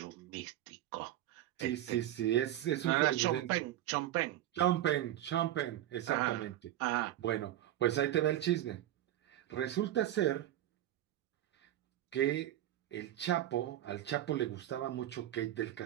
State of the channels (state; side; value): quieter; left; 13.3 dB